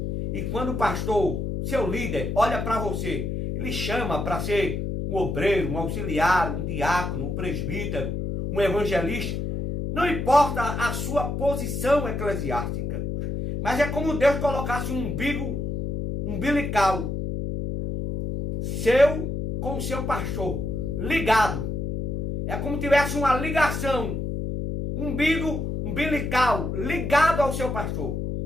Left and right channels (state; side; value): noise; left; hum, 3 dB below the sound